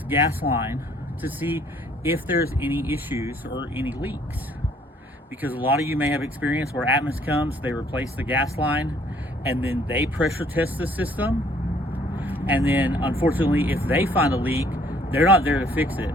gas line to see if there's any issues or any leaks. Because a lot of you may have experience where Atmos comes, they replace the gas line, and then they pressure test the system. And then unfortunately, if they find a leak, they're not there to fix it.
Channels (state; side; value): normal; both; correlation 0.61